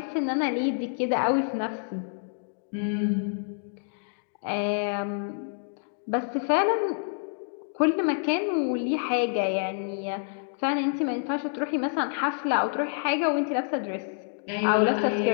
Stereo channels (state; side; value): silent; right; digital silence